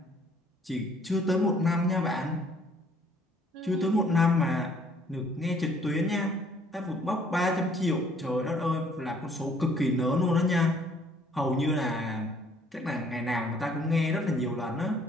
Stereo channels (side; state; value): both; normal; correlation 0.61